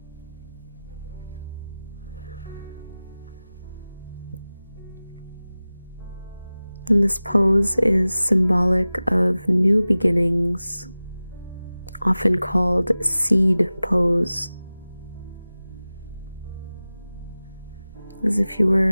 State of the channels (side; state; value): both; inverted; correlation -0.97